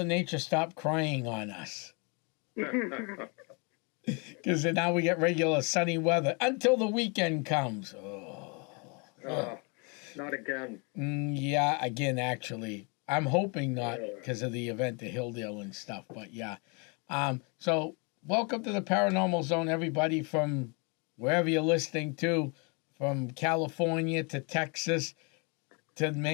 Nature stop crying on us. Because now we get regular sunny weather until the weekend comes. Not again. Yeah, again, actually. I'm hoping not because of the event at Hilldale and stuff, but yeah. So welcome to the Paranormal Zone, everybody from wherever you're listening to, from California to Texas to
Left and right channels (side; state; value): right; quieter; 33.0 dB